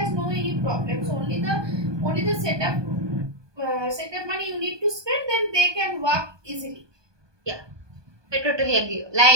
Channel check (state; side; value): late; left; 1.2 ms